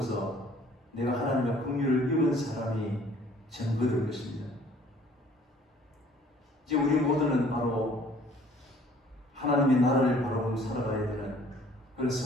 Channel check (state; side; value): normal; both; correlation 0.55